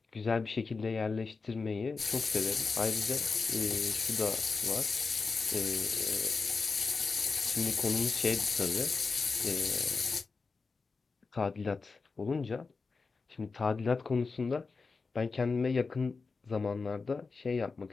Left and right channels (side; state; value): right; quieter; 4.4 dB